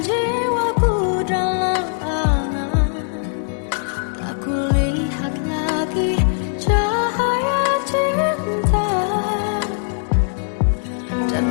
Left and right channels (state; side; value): silent; right; digital silence